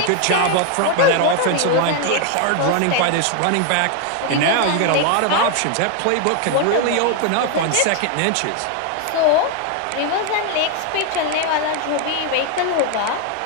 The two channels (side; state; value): both; different; correlation 0.01